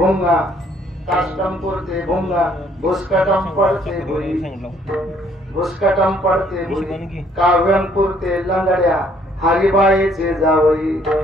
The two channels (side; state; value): both; normal; correlation 0.64